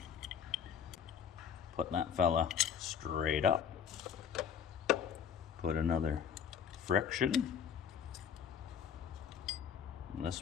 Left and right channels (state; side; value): quieter; right; 7.7 dB